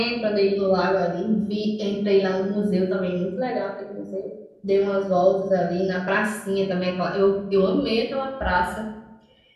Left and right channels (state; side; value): identical; both; correlation 1.00